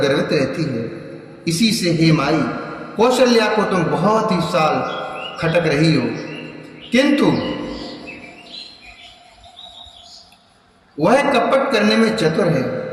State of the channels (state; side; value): identical; both; correlation 1.00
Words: रहती है। इसी से हे माई, कौशल्या को तुम बहुत ही साल खटक रही हो, किंतु वह कपट करने में चतुर है,